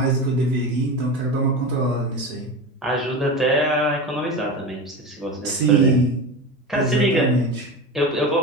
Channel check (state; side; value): normal; both; correlation 0.25